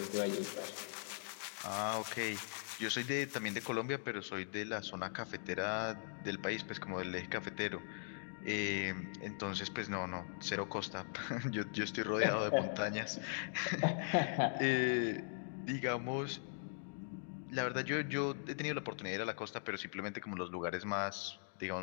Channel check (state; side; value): silent; right; digital silence